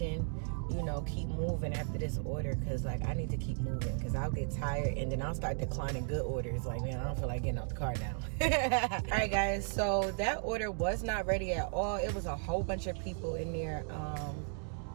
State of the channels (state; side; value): silent; left; 54 dB below the other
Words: You know, keep moving after this order, because like I need to keep moving, because I'll get tired and then I'll start declining good orders. Like, man, I don't feel like getting out the car now. All right guys, so that order was not ready at all. It was a whole bunch of people in there